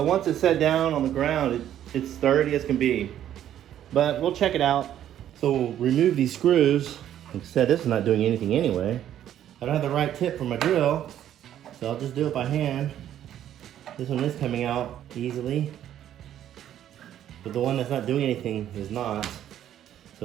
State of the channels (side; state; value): left; quieter; 11.1 dB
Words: once it's set down on the ground, it's sturdy as can be. But we'll check it out. So we'll remove these screws. Like I said, this is not doing anything anyway. I don't have the right tip for my drill, so I'll just do it by hand. This one is coming out easily, but the one that's not doing anything is not. So